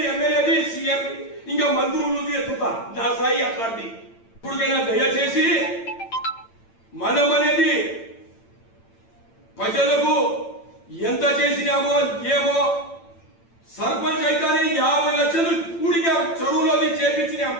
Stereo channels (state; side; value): late; right; 8.9 ms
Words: సీఎం ఇంకా మంత్రులు ఎత్తుతా. నా స్థాయి అట్లాంటి. ఇప్పటికైనా దయచేసి మనం అనేది ప్రజలకు ఎంత చేసినామో ఏమో. సర్పంచ్ అయితేనే 50 లక్షలు కూడిగా చెరువులో చేపించినాం.